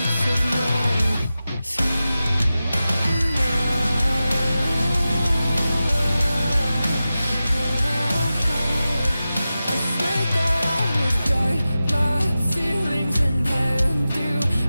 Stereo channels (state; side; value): inverted; both; correlation -0.94